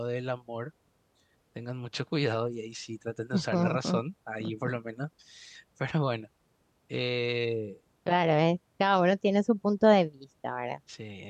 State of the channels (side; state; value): both; identical; correlation 1.00